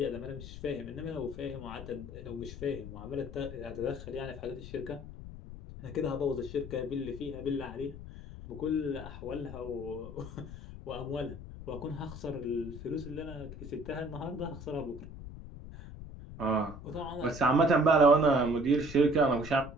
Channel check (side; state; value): left; noise; rumble, 12 dB below the sound